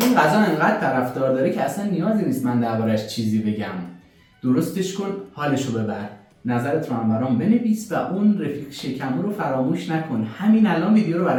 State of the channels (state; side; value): identical; both; correlation 1.00